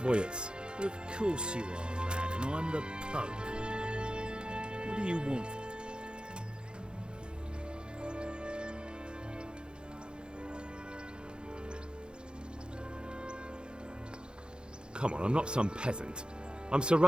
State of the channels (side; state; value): left; late; 0.050 ms